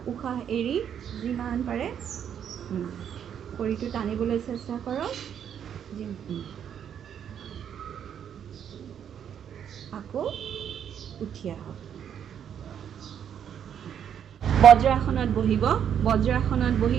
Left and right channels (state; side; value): quieter; left; 8.8 dB